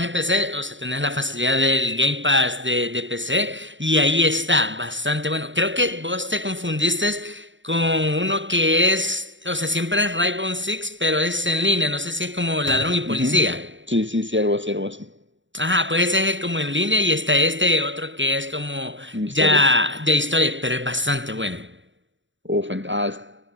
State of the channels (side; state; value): left; late; 0.55 ms